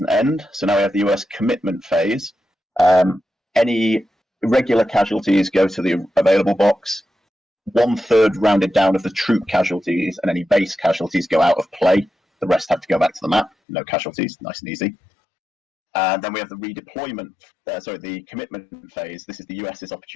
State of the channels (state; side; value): drops out; right; at 13.5 s